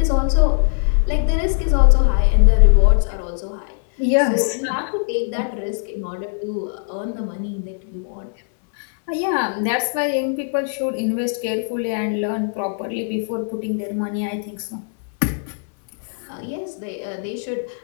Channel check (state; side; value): silent; right; digital silence